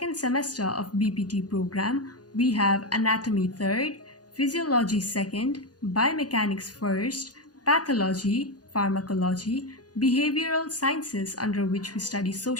semester of BPT program, we have Anatomy 3rd, Physiology 2nd, Biomechanics 1st, Pathology, Pharmacology, Behavioral Sciences, under which we study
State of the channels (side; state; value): right; late; 0.69 ms